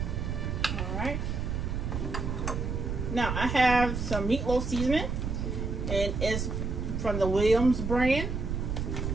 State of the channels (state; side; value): noise; right; rumble, 2 dB below the sound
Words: Alright. Now I have some meatloaf seasoning. And it's from the Williams brand.